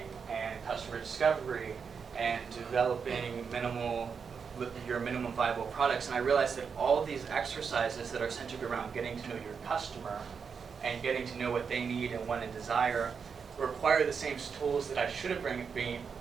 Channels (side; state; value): left; quieter; 6.1 dB